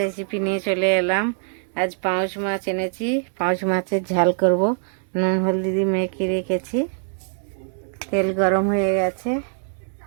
নিয়ে চলে এলাম। আজ পাউচ মাছ এনেছি। পাউচ মাছের ঝাল করব। নুন হলদি দিয়ে মেখে রেখেছি। তেল গরম হয়ে গেছে,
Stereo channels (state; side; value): silent; left; 62 dB below the other